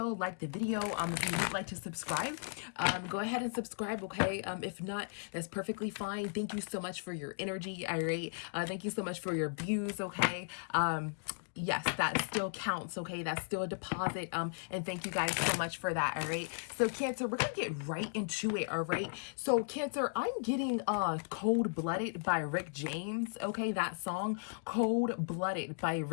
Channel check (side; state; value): right; silent; digital silence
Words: if you would like to subscribe, go ahead and subscribe, okay? If not, that's perfectly fine. Thank you so much for your energy, all right? Thank you so much for your views, okay? Yes, that still counts, okay? That's still a deposit, and thank you guys so much for that, all right? So, Cancer, we're gonna get right into it, all right? So, Cancer, I'm getting Cold-Blooded by Rick James, okay? That song, Cold-Blooded by